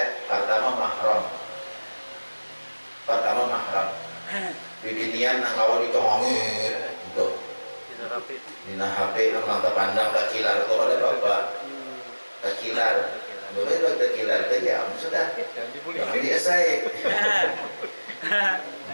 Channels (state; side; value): inverted; both; correlation -1.00